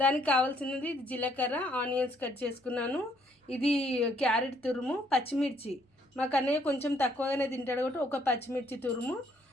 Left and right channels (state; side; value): normal; both; correlation 0.68